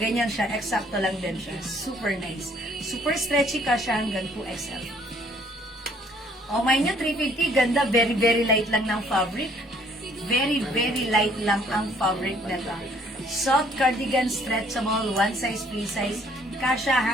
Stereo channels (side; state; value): both; normal; correlation 0.61